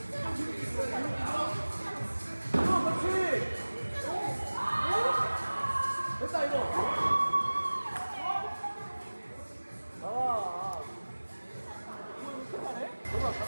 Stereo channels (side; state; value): both; inverted; correlation -1.00